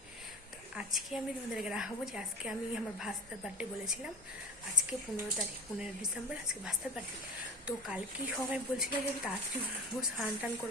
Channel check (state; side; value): normal; both; correlation 0.31